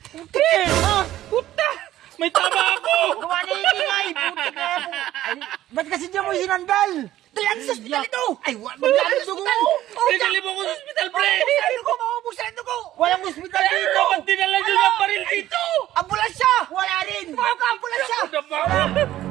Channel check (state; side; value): quieter; left; 13.8 dB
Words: Puta! May tama ako! Gawa na ingay! Putik na yan! Ay, ba't kasi niya mo sinandal? Dalan sa ospital ito! Ay, magkano dugo mo? Pinali mo ko sa hospital, pre! Maubos ang dugo! Maubos ang dugo! Walang ospital dito! Ba't dinala nyo ng baril dito? Ambulansya! Wala rin! Mga ka-ambulansya!